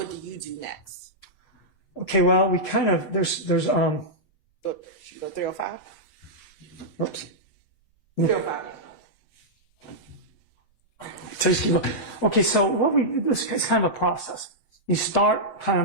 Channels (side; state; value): right; late; 6.8 ms